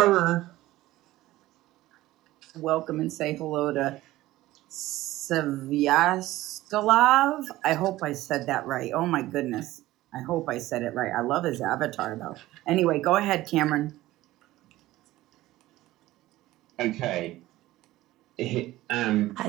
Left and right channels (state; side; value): quieter; left; 16.6 dB